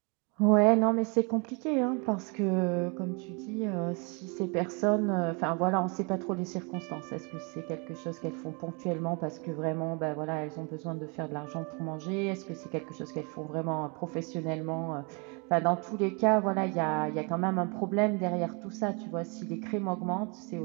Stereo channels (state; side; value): quieter; left; 32.6 dB